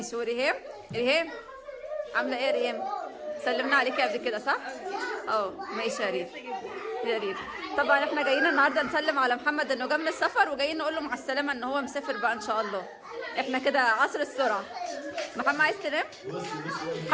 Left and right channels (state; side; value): identical; both; correlation 1.00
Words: وريهام عامله ايه يا ريهام؟ سلمنا عليكي قبل كده صح؟ ماشي يا ريت. يا ريت. طبعا احنا جايين النهارده نسلم على محمد انه جه من السفر، وجايين نقول له مع السلامه ان هو مسافر بقى ان شاء الله. احنا كده عصر السرعه. محمد عايز تنام؟